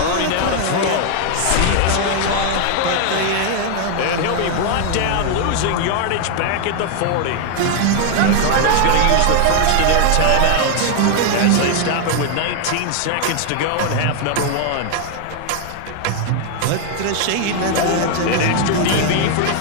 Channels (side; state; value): both; different; correlation 0.00